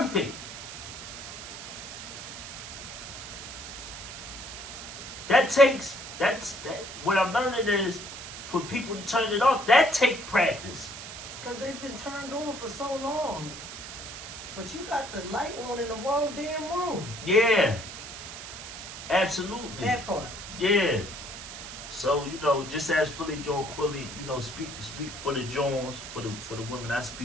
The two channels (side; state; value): right; noise; hiss, 10 dB below the sound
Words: What I'm learning is for people to turn it off, that take practice. Because they've been turned on for so long. But you got the light on in the wrong damn room. Yeah. Absolutely. That part. Yeah. So, just as Philly Joe Quilly, speak for the Jones, for the women I